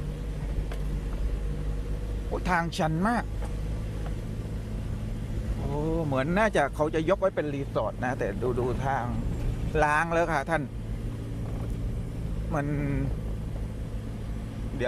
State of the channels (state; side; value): identical; both; correlation 1.00